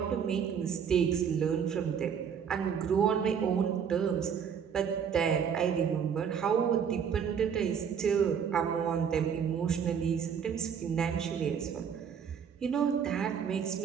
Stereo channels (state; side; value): quieter; left; 7.4 dB